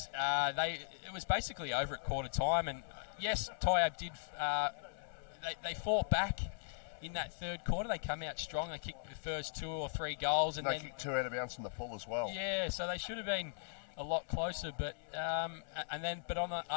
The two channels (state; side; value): silent; right; 52 dB below the other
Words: it was basically over at quarter time. And yes, Tyab did. They fought back. In that third quarter, they come out strong. They kicked the first 2 or 3 goals, and they kicked 2 out of bounds in the full as well. Yeah, so they should have been a lot closer. But but on the